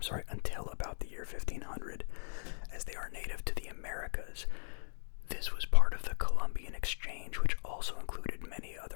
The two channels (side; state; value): right; silent; digital silence